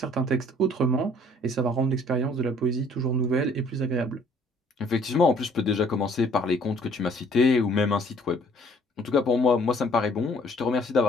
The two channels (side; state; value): both; normal; correlation 0.59